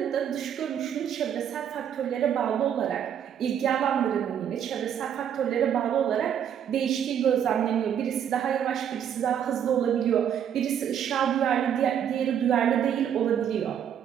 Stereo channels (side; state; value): left; quieter; 9.1 dB